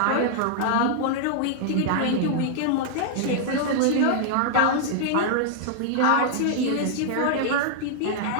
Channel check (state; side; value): different; both; correlation -0.01